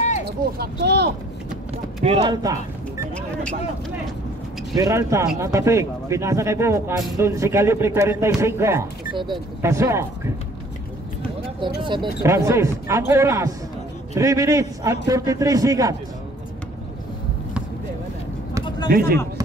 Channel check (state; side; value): normal; both; correlation 0.57